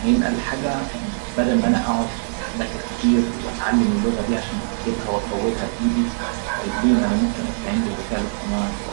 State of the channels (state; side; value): silent; left; digital silence